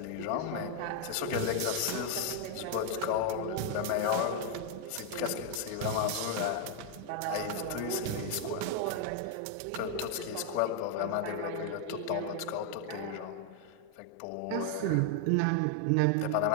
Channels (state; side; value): different; both; correlation 0.01